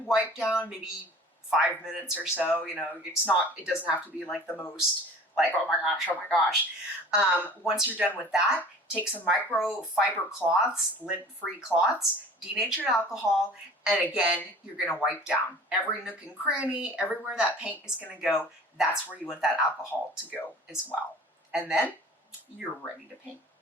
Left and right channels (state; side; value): normal; both; correlation 0.44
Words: wipe down, maybe 5 minutes or so. It doesn't have to be like the most like, oh my gosh. Once you're done with that, take some microfiber cloths, lint-free cloths, denatured alcohol, and again, you're gonna wipe down every nook and cranny, everywhere that paint is gonna go. That's where you want that alcohol to go as well. And then you're ready to paint.